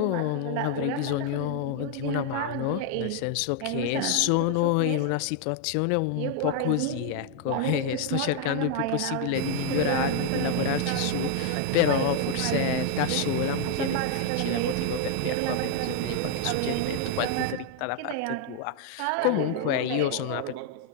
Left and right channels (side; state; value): both; different; correlation 0.00